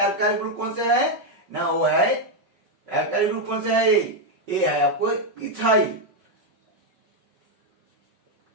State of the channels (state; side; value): late; left; 5.3 ms